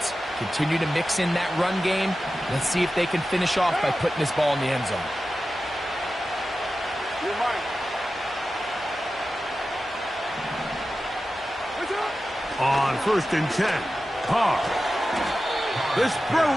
Continue to mix in that run game. Let's see if they can finish off by putting this ball in the end zone. On 1st and 10, Carr. This throw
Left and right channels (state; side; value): normal; both; correlation 0.93